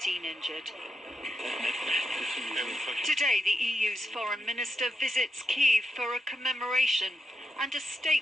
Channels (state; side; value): normal; both; correlation 0.86